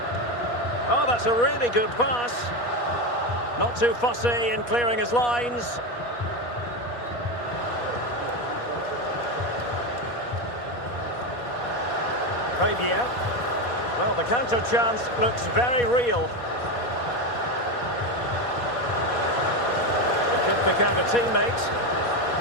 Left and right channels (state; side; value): late; right; 4.2 ms